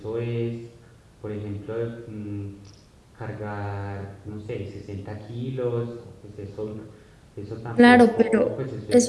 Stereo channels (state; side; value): identical; both; correlation 1.00